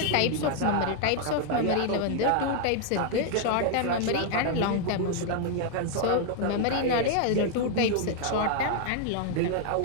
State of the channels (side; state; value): both; different; correlation 0.00